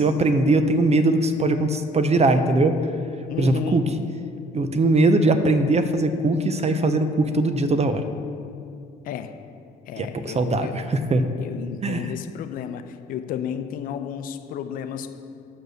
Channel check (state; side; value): normal; both; correlation 0.60